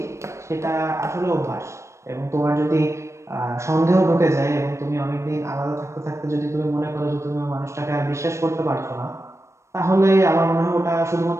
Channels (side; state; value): left; late; 0.14 ms